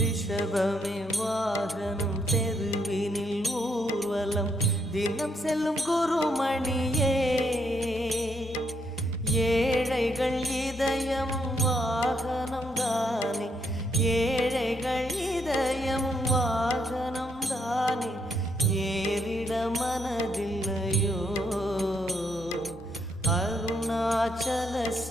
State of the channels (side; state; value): both; normal; correlation 0.75